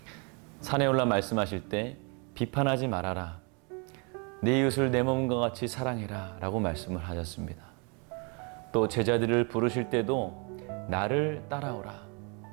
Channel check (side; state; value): left; quieter; 34.3 dB